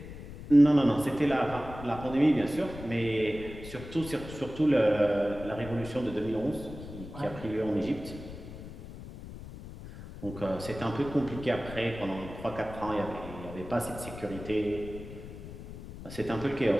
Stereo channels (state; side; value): noise; left; rumble, 13 dB below the sound